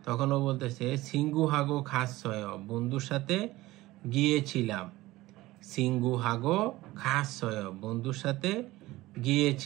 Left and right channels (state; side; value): quieter; left; 18.2 dB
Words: তখন ও বলতেছে সিঙ্গু হাগো খাস ছয় বন্ধুর সাথে গিয়েছিলাম, সিঙ্গু হাগো খাস ছয় বন্ধুর সাথে